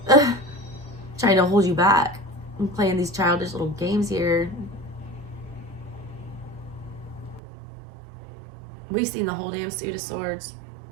trying to hold you back. I'm playing these childish little games here. We've seen the whole damn Suit of Swords.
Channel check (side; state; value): left; drops out; at 7.4 s